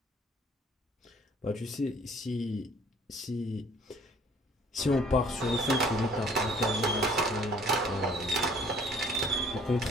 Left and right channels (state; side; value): normal; both; correlation 0.56